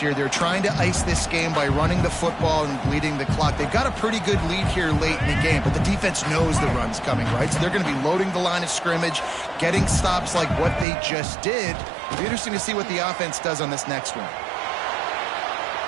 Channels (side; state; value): left; drops out; at 10.9 s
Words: They're trying to ice this game by running the football and bleeding the clock. They've got a pretty good lead here late in the game, but the defense knows the run's coming, right? So they're going to be loading the line of scrimmage, getting stops like what they just did. It'll be interesting to see what the offense does on this next one.